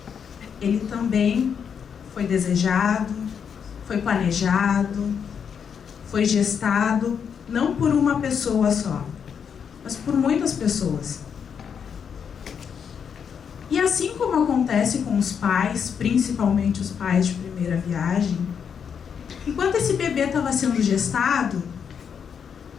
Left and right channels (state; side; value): quieter; right; 7.2 dB